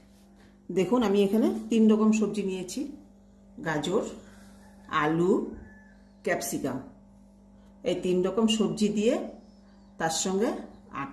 দেখুন, আমি এখানে 3 রকম সবজি নিয়েছি: গাজর, আলু, ক্যাপসিকাম। এই 3 রকম সবজি দিয়ে তার সঙ্গে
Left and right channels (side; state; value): both; identical; correlation 1.00